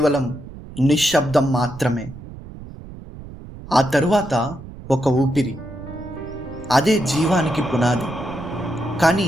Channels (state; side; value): noise; right; rumble, 15 dB below the sound